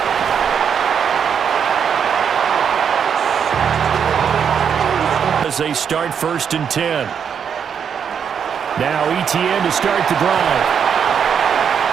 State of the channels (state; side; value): quieter; left; 7.5 dB